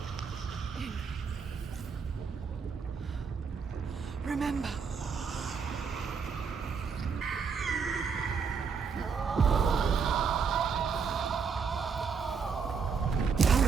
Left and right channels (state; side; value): quieter; left; 5.8 dB